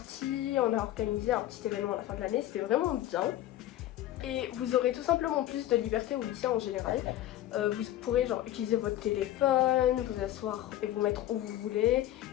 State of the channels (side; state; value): right; quieter; 13.5 dB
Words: on a organisé un petit événement à la fin de l'année, c'était vraiment bien. Et vous aurez tout simplement plus de liberté au lycée en général. Vous pourrez genre utiliser votre téléphone, vous asseoir et vous mettre où vous voulez.